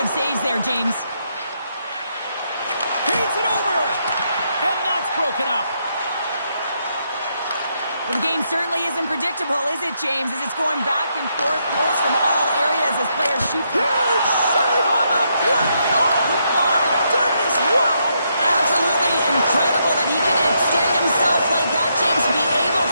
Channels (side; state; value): both; inverted; correlation -0.78